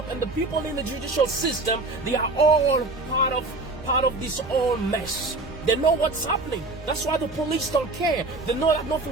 and the people in the judicial system, they are all part of this whole mess. They know what's happening. That's why the police don't care. They know that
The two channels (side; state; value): left; quieter; 3.2 dB